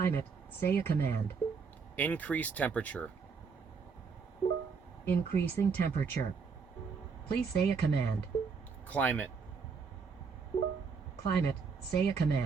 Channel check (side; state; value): left; quieter; 5.5 dB